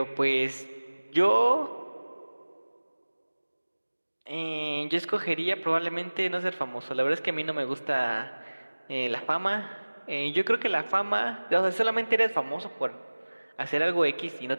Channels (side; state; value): both; inverted; correlation -1.00